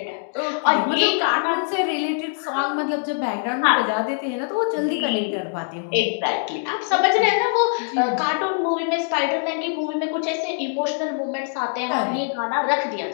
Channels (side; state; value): right; silent; 64 dB below the other